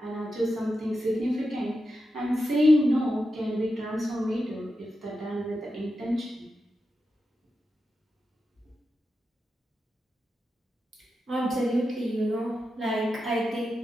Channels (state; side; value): normal; both; correlation 0.89